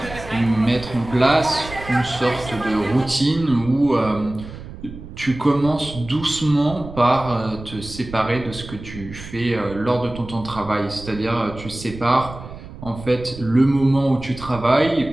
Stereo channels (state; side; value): noise; right; rumble, 14 dB below the sound